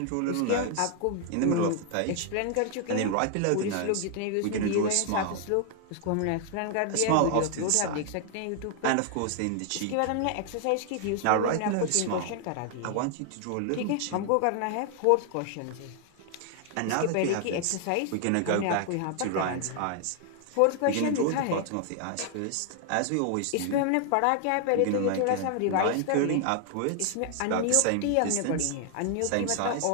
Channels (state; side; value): different; both; correlation 0.00